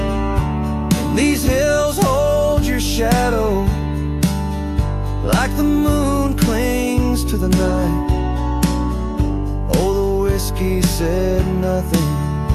And these hills hold your shadow like the moon clings to the night. Oh, the whiskey said nothing,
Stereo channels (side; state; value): both; identical; correlation 1.00